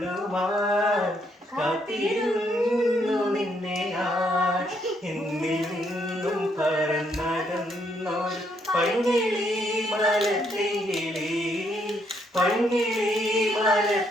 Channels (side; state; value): both; normal; correlation 0.73